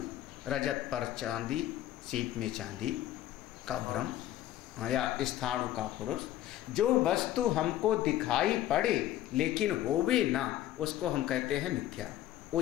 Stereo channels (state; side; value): quieter; right; 13.4 dB